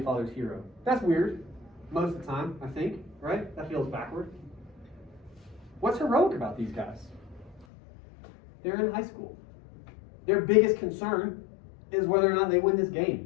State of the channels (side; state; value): right; drops out; at 7.7 s